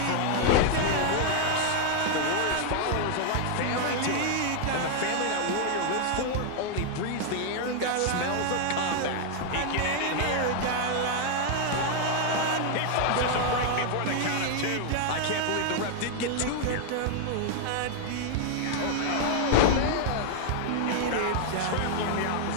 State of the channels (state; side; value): different; both; correlation 0.00